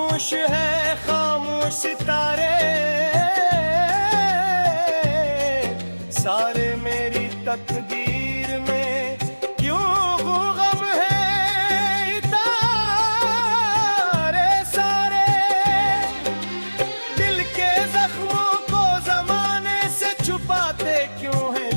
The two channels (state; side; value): inverted; both; correlation -1.00